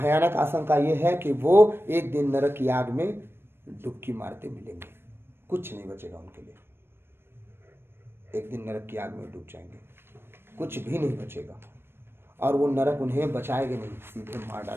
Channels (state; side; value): late; left; 0.11 ms